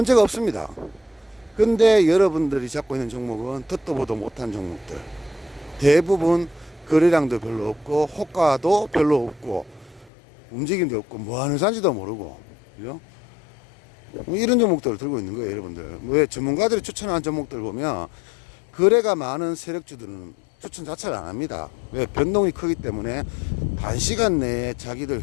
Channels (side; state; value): right; drops out; at 10.1 s